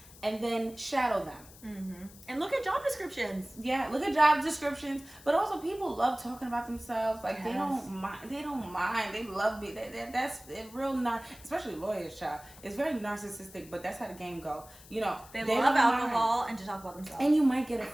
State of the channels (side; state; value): left; noise; hiss, 21 dB below the sound